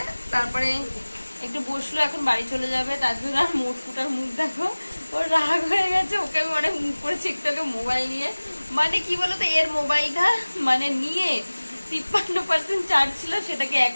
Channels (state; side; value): inverted; both; correlation -1.00